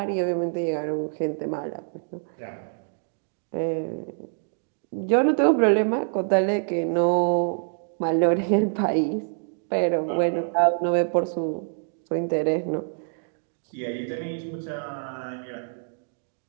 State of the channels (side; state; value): left; silent; digital silence